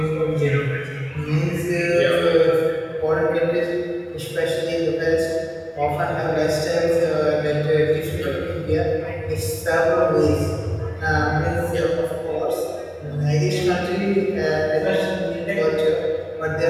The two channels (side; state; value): both; identical; correlation 1.00